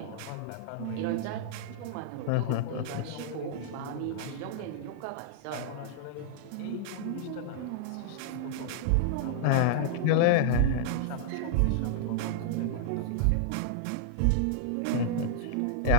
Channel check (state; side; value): different; both; correlation -0.01